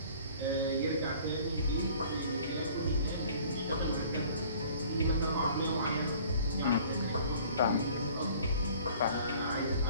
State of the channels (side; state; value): both; inverted; correlation -0.51